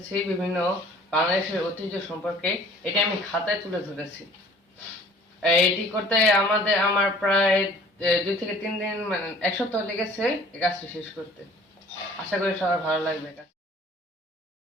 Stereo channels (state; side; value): normal; both; correlation 0.51